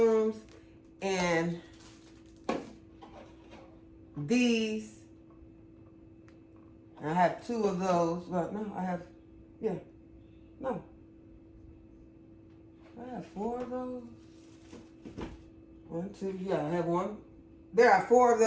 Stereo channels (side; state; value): both; identical; correlation 1.00